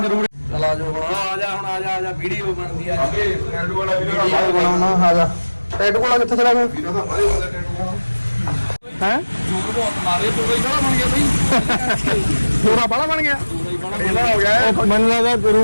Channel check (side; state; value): both; inverted; correlation -1.00